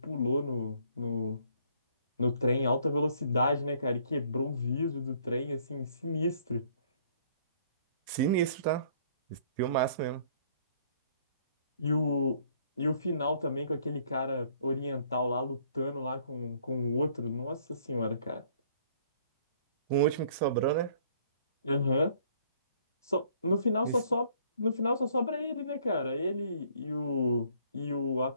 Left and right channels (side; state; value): both; inverted; correlation -0.61